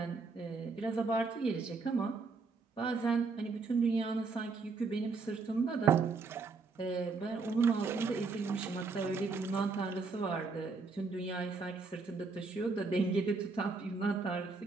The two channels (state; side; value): quieter; left; 4.3 dB